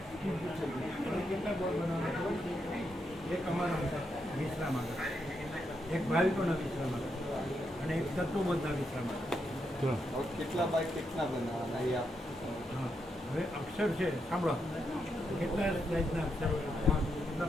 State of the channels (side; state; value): both; normal; correlation 0.82